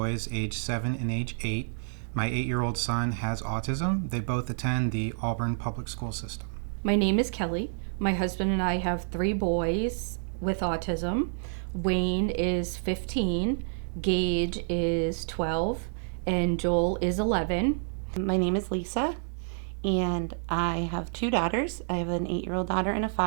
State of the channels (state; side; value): silent; left; digital silence